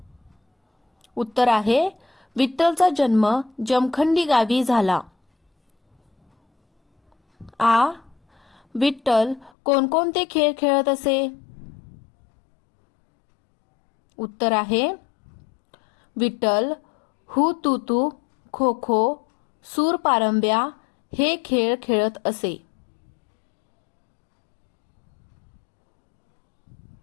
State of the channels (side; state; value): right; drops out; at 9.5 s